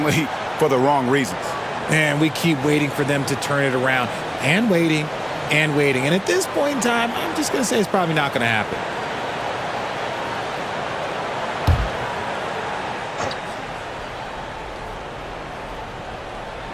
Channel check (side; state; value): both; identical; correlation 1.00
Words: for the wrong reasons. And we keep waiting for them to turn it around and waiting and waiting. And at this point in time, I'm just going to say it's probably not going to happen.